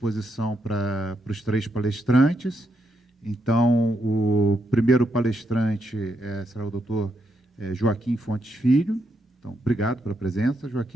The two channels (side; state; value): both; normal; correlation 0.80